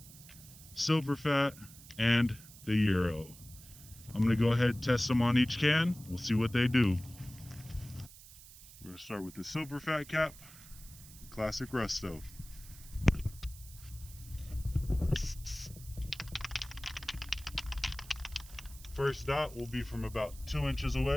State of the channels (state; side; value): noise; right; hiss, 19 dB below the sound